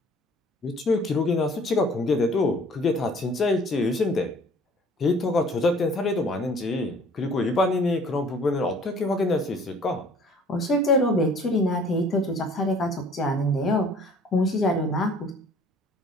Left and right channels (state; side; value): normal; both; correlation 0.53